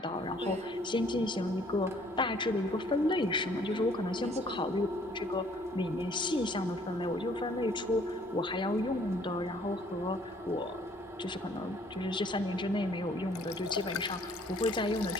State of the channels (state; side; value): normal; both; correlation 0.60